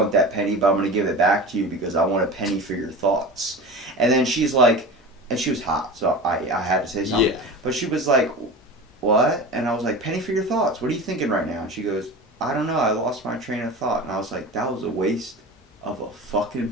that penny, but I'm going to give it back to you because I want a penny for your thoughts. And then she's like, and she was hot, so I had to say something. Yeah. But she was like, what? And I was like, penny for your thoughts. What are you thinking right now? And she goes, I don't know. I lost my train of thought. And I was like, that was a waste of a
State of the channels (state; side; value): normal; both; correlation 0.32